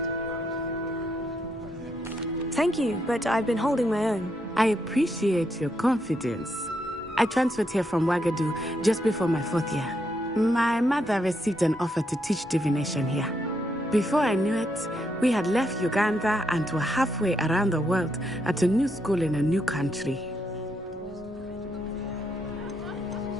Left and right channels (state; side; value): normal; both; correlation 0.78